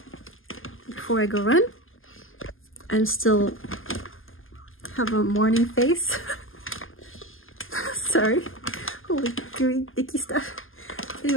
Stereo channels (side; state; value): right; late; 0.59 ms